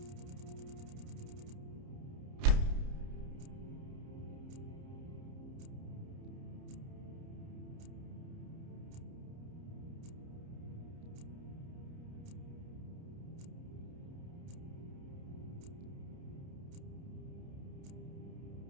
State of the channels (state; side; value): late; left; 30 ms